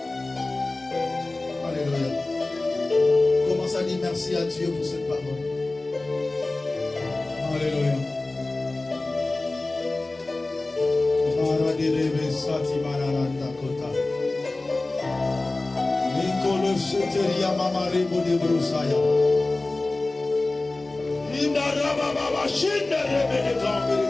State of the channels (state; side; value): quieter; right; 3.1 dB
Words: Alléluia. Commence à dire merci à Dieu pour cette parole. Alléluia.